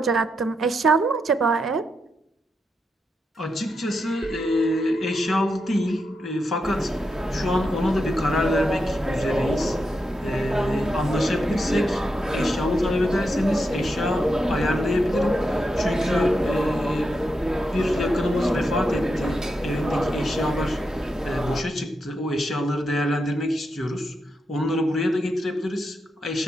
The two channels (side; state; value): both; normal; correlation 0.85